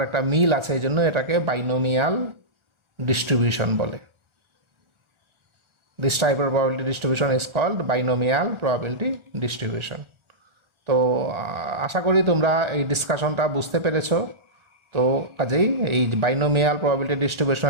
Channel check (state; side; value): late; left; 1.4 ms